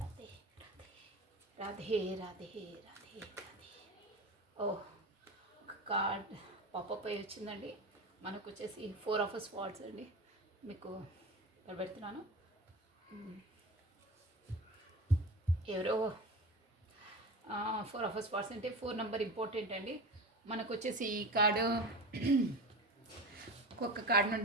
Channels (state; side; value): normal; both; correlation 0.29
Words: రాధే రాధే రాధే రాధే. ఓ కార్డ్ పాపప్ అయి వచ్చిందండి. మనకు వచ్చేసి 4 of Swords అండి. మీకు పెడుతున్నాను. ఎవరో 4 of Swords అంటే 4 నెంబర్ ఇంపార్టెంట్ అండి. మనకు వచ్చేసి ఈ కార్డు ఒక్కొక్క కార్డు